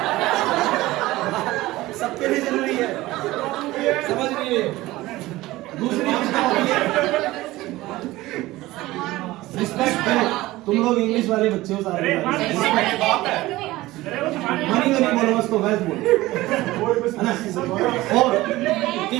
सबके लिए जरूरी है, समझ रही है? दूसरी चीज क्या होती है, रिस्पेक्ट करो। तुम लोग इंग्लिश वाले बच्चे हो सारे, मनी तो नहीं बोलो, उसको वैसे बोलो, है ना? और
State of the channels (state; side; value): quieter; left; 18.1 dB